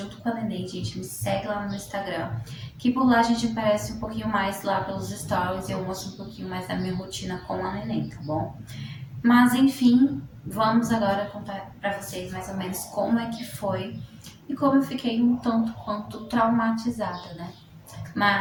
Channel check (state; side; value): identical; both; correlation 1.00